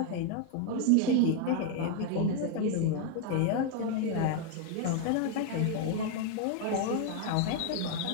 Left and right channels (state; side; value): different; both; correlation 0.00